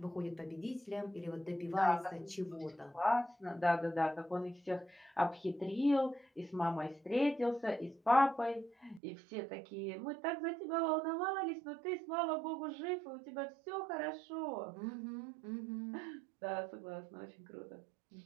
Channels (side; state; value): left; drops out; at 9.0 s